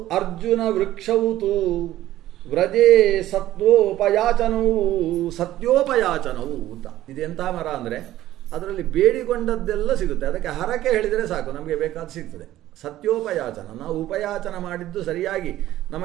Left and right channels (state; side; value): quieter; left; 14.2 dB